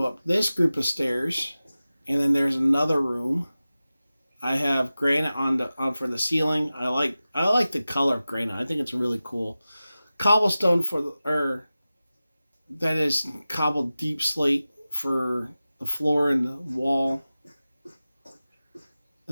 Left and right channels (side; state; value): both; inverted; correlation -0.96